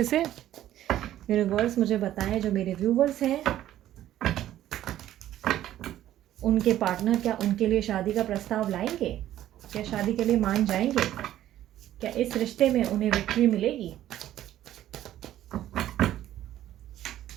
से। यूनिवर्स मुझे बताएं, जो मेरे व्यूवर्स हैं उनके पार्टनर क्या उनके लिए शादी का प्रस्ताव लाएंगे, क्या शादी के लिए मान जाएंगे, क्या इस रिश्ते में उन्हें विक्ट्री मिलेगी।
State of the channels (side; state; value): left; quieter; 12.8 dB